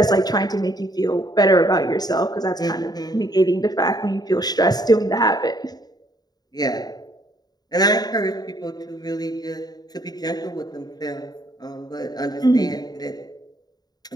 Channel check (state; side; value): late; right; 0.19 ms